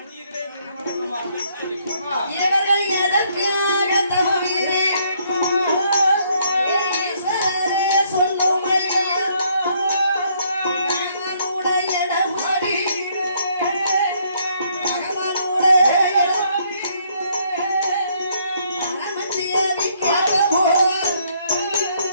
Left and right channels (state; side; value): inverted; both; correlation -0.68